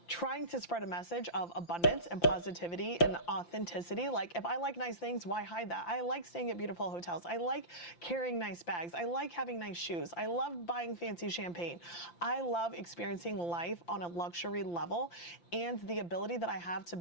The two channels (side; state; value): right; late; 5.8 ms